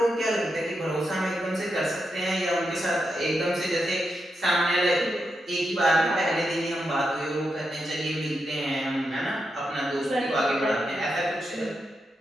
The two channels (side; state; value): both; normal; correlation 0.85